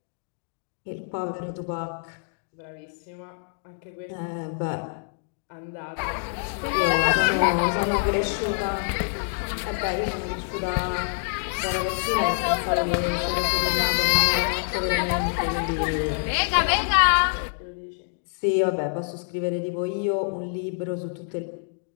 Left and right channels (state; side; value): silent; right; digital silence